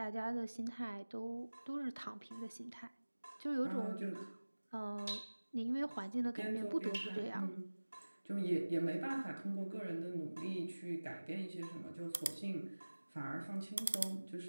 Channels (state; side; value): inverted; both; correlation -1.00